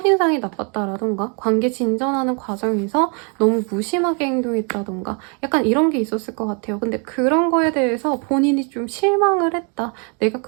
나빴다라던가 관계 진전하는 과정에서 너무 무심하게 행동했다던가 약간 약간 이런 게 있었을 것 같아요. 근데 그런 거에 대해서 본인이 좀 실망을 했다. 내가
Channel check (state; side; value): quieter; left; 36.5 dB